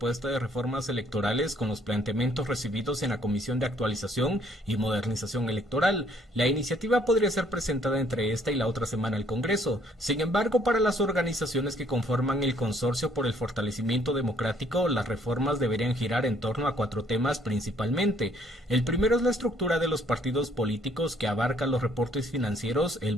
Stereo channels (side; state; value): both; normal; correlation 0.64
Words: de reformas electorales con los planteamientos recibidos en la Comisión de Actualización y Modernización Electoral. La iniciativa podría ser presentada entre esta y la otra semana al Congreso. Sin embargo, para las organizaciones que conforman el Consorcio por el Fortalecimiento Democrático, las reformas deberían girar en torno a 4 temas principalmente. El primero es la estructura de los partidos políticos, que abarca los reportes financieros, el